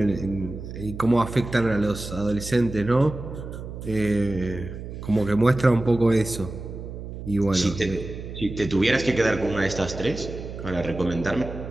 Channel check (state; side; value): noise; right; hum, 10 dB below the sound